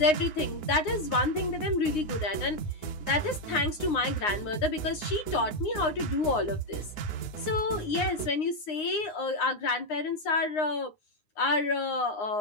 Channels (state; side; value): late; right; 9.7 ms